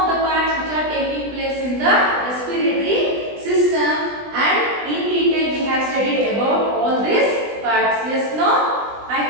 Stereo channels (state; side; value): late; left; 20 ms